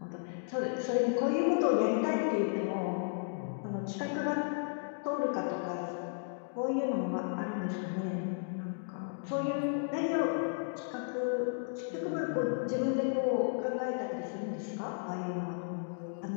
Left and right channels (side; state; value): right; silent; digital silence